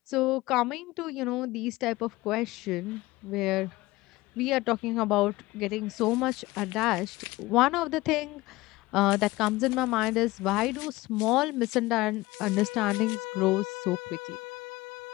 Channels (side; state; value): right; quieter; 19.7 dB